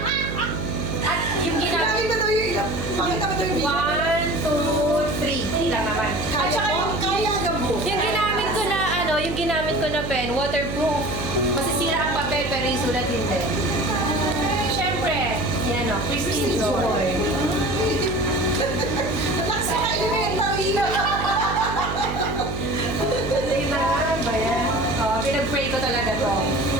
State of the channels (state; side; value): noise; right; hum, 6 dB below the sound